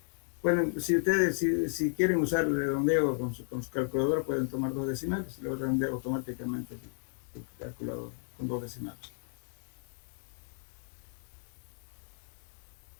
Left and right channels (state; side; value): silent; right; 56 dB below the other